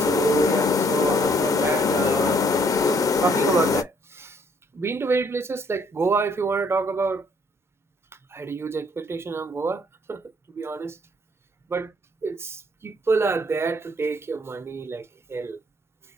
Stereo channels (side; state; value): both; normal; correlation 0.64